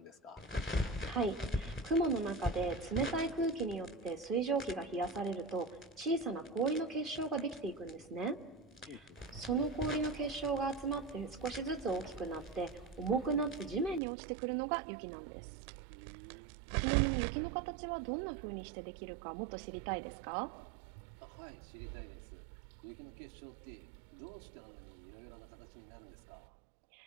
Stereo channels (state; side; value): drops out; left; at 14.0 s